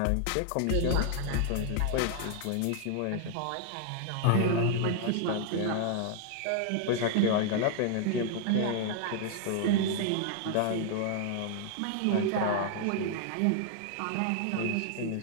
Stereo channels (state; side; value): different; both; correlation 0.00